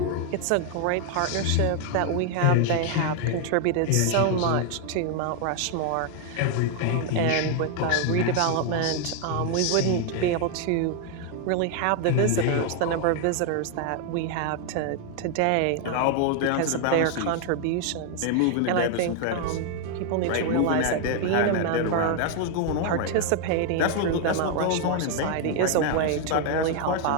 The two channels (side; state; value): both; different; correlation 0.00